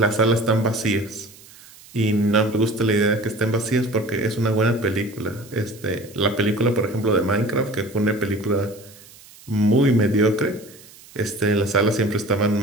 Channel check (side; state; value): right; noise; hiss, 22 dB below the sound